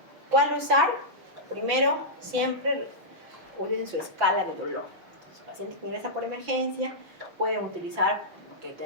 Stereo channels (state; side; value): late; left; 6.4 ms